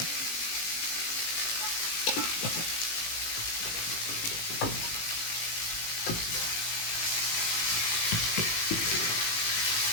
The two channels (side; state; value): right; late; 18 ms